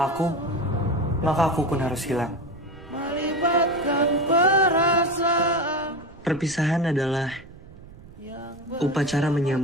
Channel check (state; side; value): noise; right; rumble, 20 dB below the sound